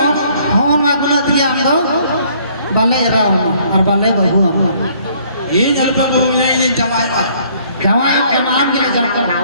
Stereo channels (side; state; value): both; inverted; correlation -0.62